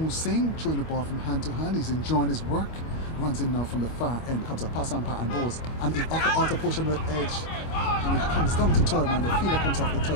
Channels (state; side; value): late; right; 25 ms